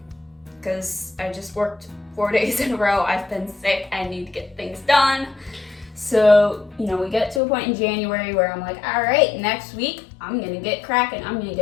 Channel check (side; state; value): right; drops out; at 7.4 s